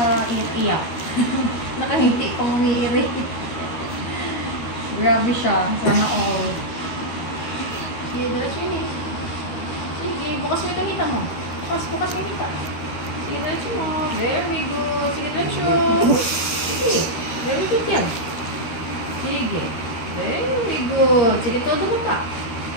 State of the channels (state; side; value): late; right; 13 ms